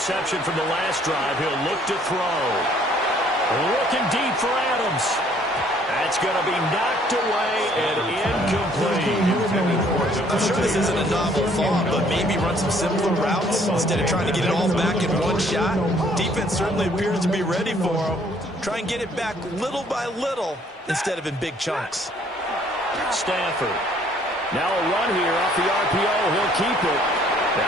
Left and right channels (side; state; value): both; normal; correlation 0.61